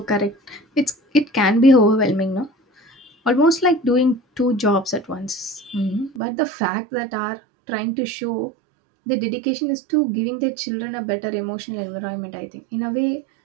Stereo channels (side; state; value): left; drops out; at 6.2 s